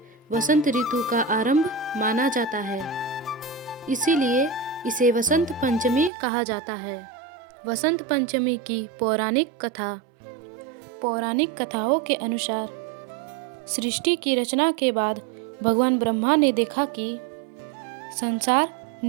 वसंत ऋतु का आरंभ माना जाता है, इसीलिए इसे वसंत पंचमी कहा जाता है। वसंत पंचमी की पौराणिक कथाओं के अनुसार सृष्टि की रचना के बाद भगवान ब्रह्मा ने देखा कि संसार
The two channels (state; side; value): drops out; left; at 6.1 s